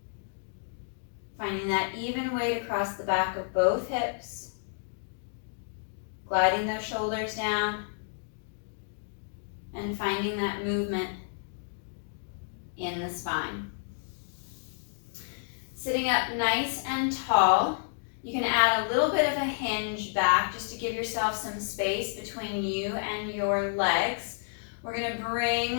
Finding that even weight across the back of both hips. Gliding those shoulders down. And finding that movement in the spine. Sitting up nice and tall. You can add a little bit of a hinge back just to give yourself some space between you and your legs. We're going to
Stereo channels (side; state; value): right; silent; digital silence